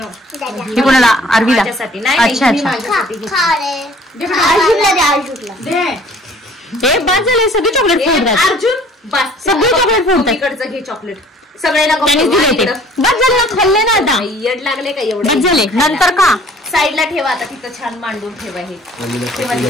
ही कोणाला? आरवीला. माझ्यासाठी नाही. अच्छा अच्छा. माझ्यासाठी घेतली. दे. हे बस झाले सगळे चॉकलेट फोडतात. अर्जुन बस सगळे चॉकलेट फोडतात. मम्मीकडचं घे चॉकलेट. सगळ्यांना त्यांनीच दिले ते. बस झाले ना, खाल्ले ना आता. येड लागले का एवढे? बस झाले. नंतर का साईडला ठेवा आता, तिथं छान मांडून ठेवा. हे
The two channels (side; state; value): both; normal; correlation 0.53